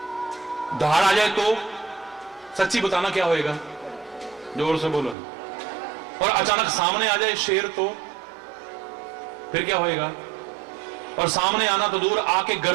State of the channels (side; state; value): left; drops out; at 5.2 s